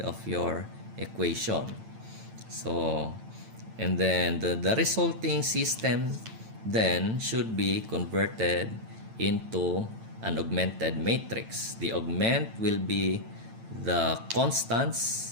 of your equation. So, and then the resulting system then should be converted into an augmented matrix. The augment will be the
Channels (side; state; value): left; late; 9.0 ms